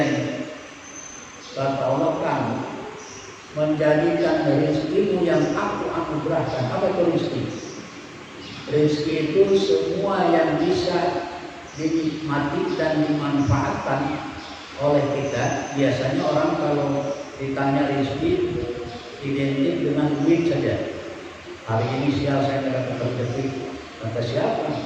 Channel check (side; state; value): both; identical; correlation 1.00